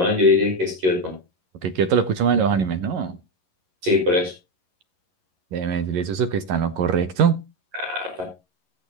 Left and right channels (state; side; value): late; left; 11 ms